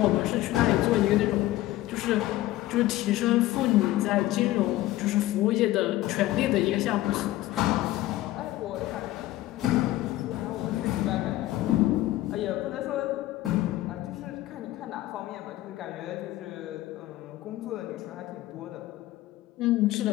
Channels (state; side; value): quieter; right; 16.1 dB